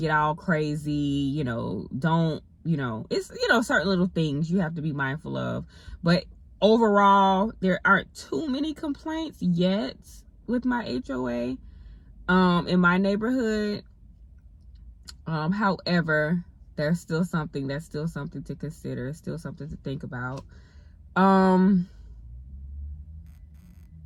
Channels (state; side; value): identical; both; correlation 1.00